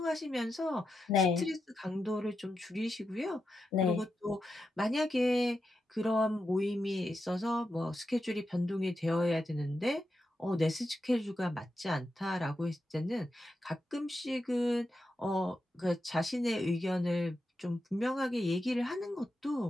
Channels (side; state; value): both; normal; correlation 0.87